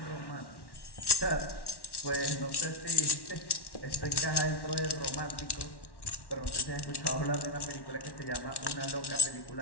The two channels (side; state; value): right; late; 1.1 ms